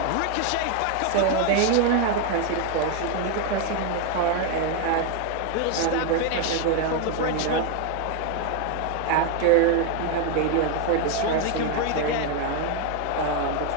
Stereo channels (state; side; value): different; both; correlation 0.01